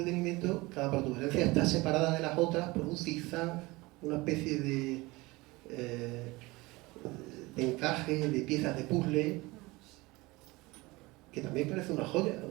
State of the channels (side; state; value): left; quieter; 22.2 dB